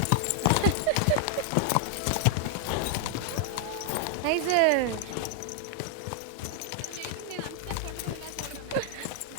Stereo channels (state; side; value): different; both; correlation 0.00